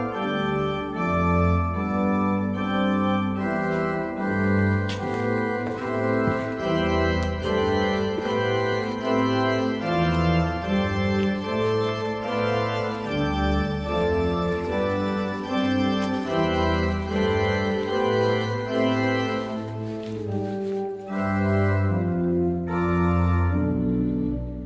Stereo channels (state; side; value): identical; both; correlation 1.00